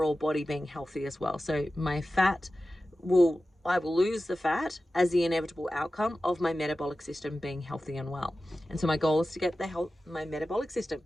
body being healthy as well. So my fat will I will lose the fat as the inevitable outcome of my metabolic system being healthy and well. And so my goal is to get my metabolic system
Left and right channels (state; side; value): normal; both; correlation 0.94